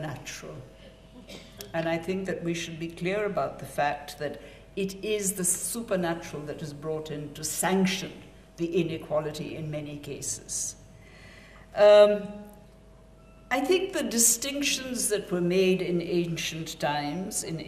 And I think that we should be clear about the fact that it is the supernatural that is brought in to sanction the inequality in many cases. I think the distinctions that were made in ancient times, in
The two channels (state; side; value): identical; both; correlation 1.00